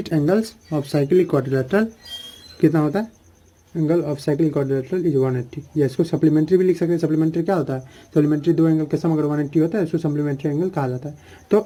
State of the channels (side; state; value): both; identical; correlation 1.00